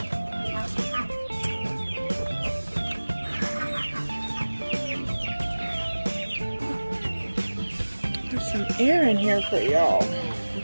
There's some air in here for y'all.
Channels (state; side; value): inverted; both; correlation -1.00